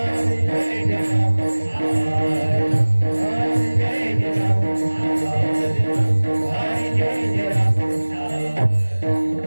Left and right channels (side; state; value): both; inverted; correlation -1.00